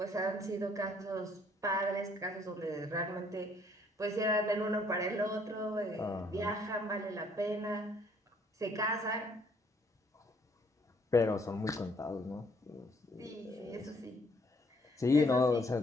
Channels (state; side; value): normal; both; correlation 0.64